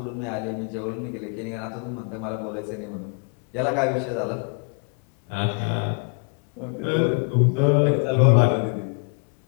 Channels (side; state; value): right; quieter; 38.7 dB